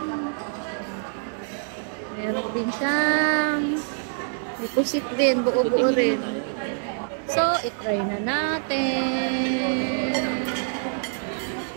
Meron din siyang may pusit din, buo-buo rin. So, itry na natin.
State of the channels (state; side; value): silent; left; digital silence